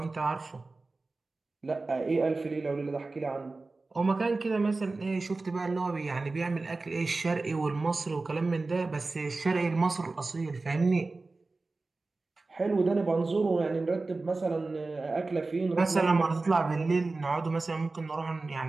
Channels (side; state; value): left; quieter; 3.5 dB